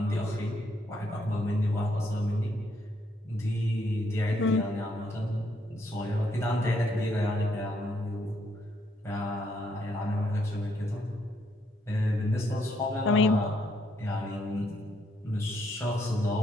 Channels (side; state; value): both; normal; correlation 0.73